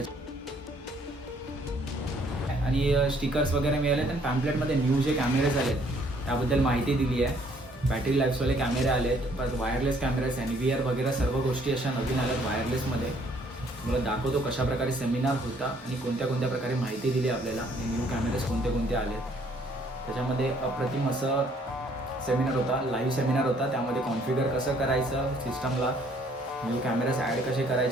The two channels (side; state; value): both; normal; correlation 0.63